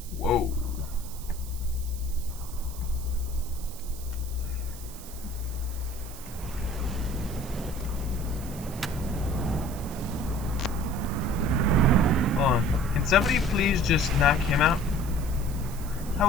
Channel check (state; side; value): noise; right; hiss, 15 dB below the sound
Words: Whoa. Hold on. Can somebody please just knock him out? I